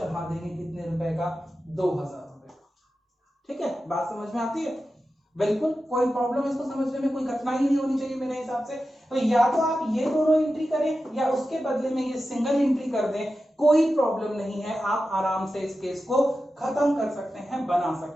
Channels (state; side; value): normal; both; correlation 0.92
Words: देंगे कितने रुपए का, 2000 रुपए का। ठीक है, बात समझ में आती है, बिल्कुल कोई प्रॉब्लम इसको समझने में कोई कठिनाई नहीं होनी चाहिए मेरे हिसाब से। तो या तो आप ये दोनों एंट्री करें या उसके बदले में ये सिंगल एंट्री कर दें, कोई प्रॉब्लम नहीं है, आप आराम से इस केस को खत्म कर सकते हैं, बना